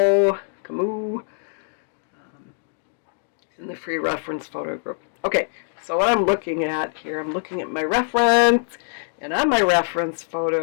in the free reference photo group. Okay, so what I'm looking at here, I'm looking at my reference, and on my reference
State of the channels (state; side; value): silent; right; digital silence